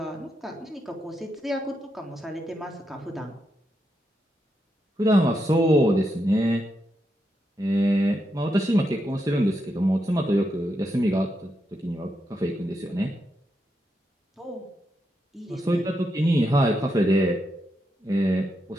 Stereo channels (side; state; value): both; normal; correlation 0.83